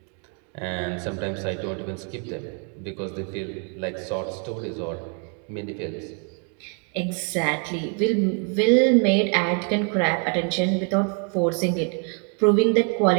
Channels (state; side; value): quieter; left; 39.5 dB